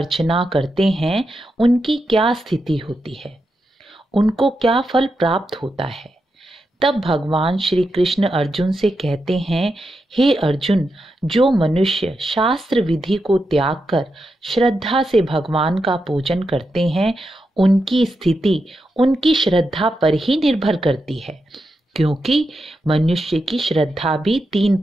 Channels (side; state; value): both; normal; correlation 0.87